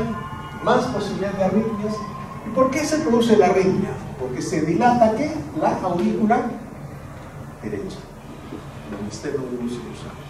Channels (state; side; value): identical; both; correlation 1.00